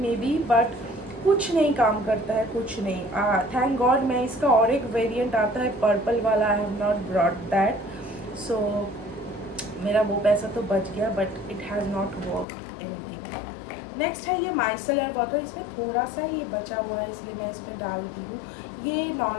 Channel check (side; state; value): right; drops out; at 12.5 s